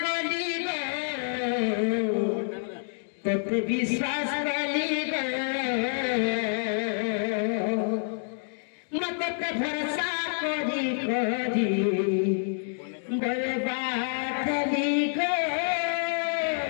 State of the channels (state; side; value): silent; right; digital silence